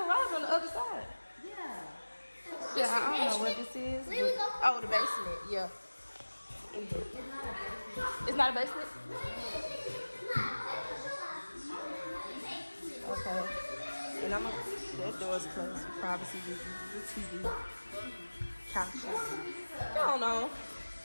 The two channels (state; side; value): inverted; both; correlation -1.00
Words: garage on the other side. Yeah. Yeah, I don't know what this is. Oh, the basement. Yeah. It's not a basement? Okay. And that door's closed for privacy reasons. The TV. Couches. I don't know.